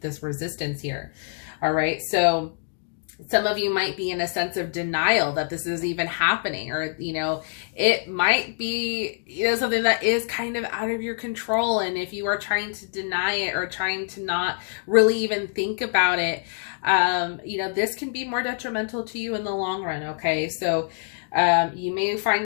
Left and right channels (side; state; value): right; silent; digital silence